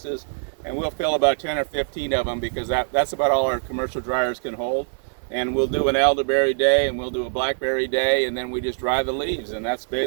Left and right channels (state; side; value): silent; left; digital silence